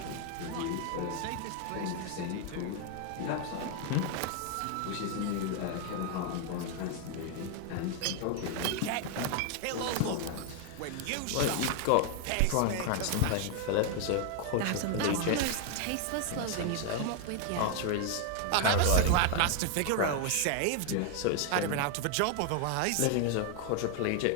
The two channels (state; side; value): different; both; correlation 0.00